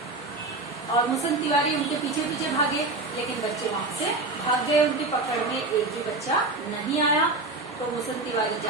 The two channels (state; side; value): quieter; left; 3.2 dB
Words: और मूसम तिवारी उनके पीछे पीछे भागे, लेकिन बच्चे वहां से भाग गए। उनकी पकड़ में एक भी बच्चा नहीं आया, तो मूसम तिवारी